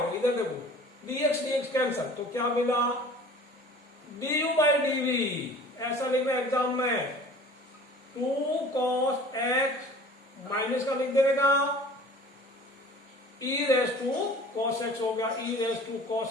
इधर देखो dx कैंसल, तो क्या मिला du बाई dv, ऐसा लिखना एग्जाम में 2 cos x माइनस का लिख देने का e raise to cos x हो गया, e raise to cos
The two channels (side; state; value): both; normal; correlation 0.45